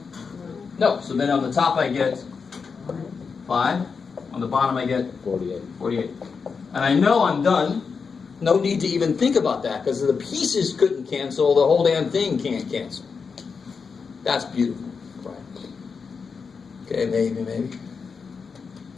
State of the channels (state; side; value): quieter; right; 5.4 dB